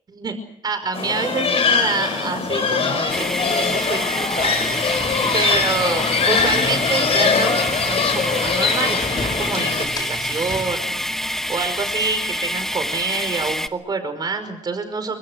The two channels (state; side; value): normal; both; correlation 0.28